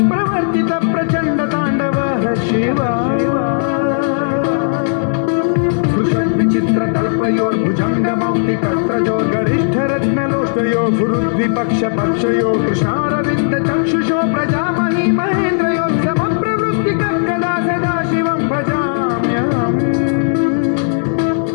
प्रवर्तित प्रचण्ड ताण्डवः शिव विचित्रकल्पयोर्भुजङ्गमौक्तिकत्रयो गरिष्ठरत्नलोष्टयो गुरुद्विपक्षपक्षयो कृष्णारविन्द चक्षुषो प्रजामहि महेन्द्रयो समप्रवृत्तिकर्कदा सदा शिवं भजाम्यहम्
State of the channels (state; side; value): silent; right; digital silence